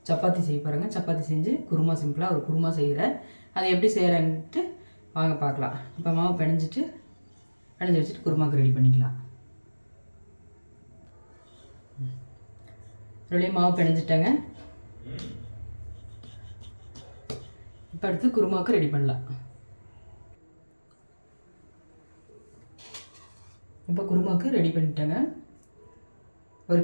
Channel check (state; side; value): inverted; both; correlation -1.00